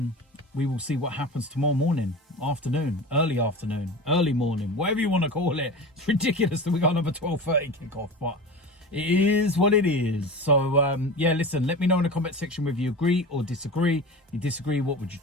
we will see what happens tomorrow morning, afternoon, early morning, whatever you want to call it. It's ridiculous that we got another 12:30 kickoff, but it is what it is. So, yeah, listen, let me know in the comment section whether you agree or disagree. If you disagree, what would you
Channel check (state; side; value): normal; both; correlation 0.31